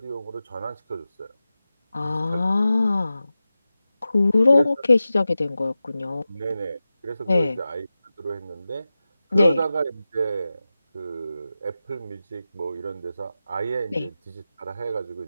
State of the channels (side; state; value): both; inverted; correlation -0.94